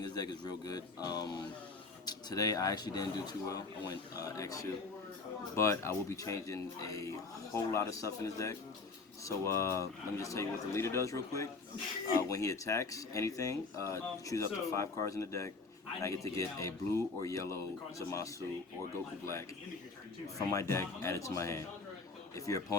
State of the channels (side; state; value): right; quieter; 4.0 dB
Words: this deck is real good. Today I actually didn't do too well. I went X2, but I will be changing a whole lot of stuff in this deck. So let me just tell you what the leader does real quick. When he attacks anything, choose up to 5 cards in the deck, and I get to get a blue or yellow Zumasu or Goku Black from my deck added to my hand. If your